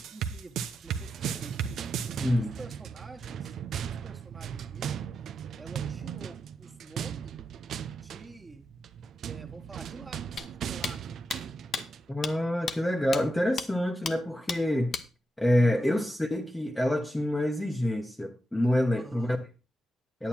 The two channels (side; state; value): both; normal; correlation 0.88